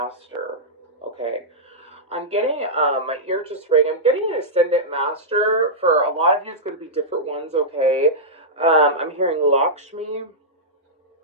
Okay. I'm getting my ear just ring. I'm getting an ascendant master. For a lot of you, it's going to be different ones. Okay. I'm hearing Lakshmi.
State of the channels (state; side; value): normal; both; correlation -0.12